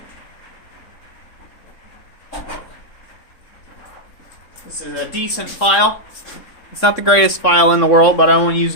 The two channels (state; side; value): late; right; 3.6 ms